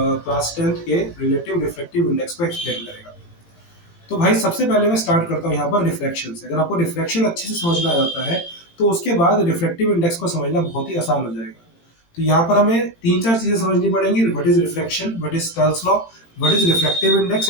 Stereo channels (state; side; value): late; right; 18 ms